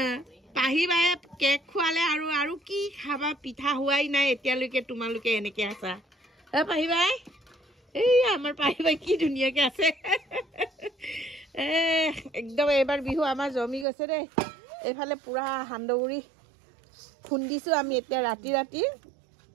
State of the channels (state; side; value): drops out; left; at 13.9 s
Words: পাহি বায়ে কেক খোৱালে আৰু কি খাবা পিঠা হোৱাই নাই এতিয়ালৈকে তোমালোকে এনেকৈ আছা পাহি বাই এই আমাৰ পাহি বাই কি ধুনীয়াকৈ আছে একদম এইবাৰ বিহু আমাৰ জমি গৈছে দেই এইফালে পুৰা সান্দহগুৰি খুন্দিছোঁ আমি এতিয়া ৰাতি